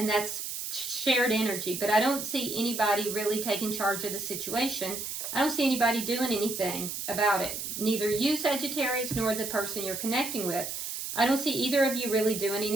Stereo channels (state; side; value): noise; right; hiss, 5 dB below the sound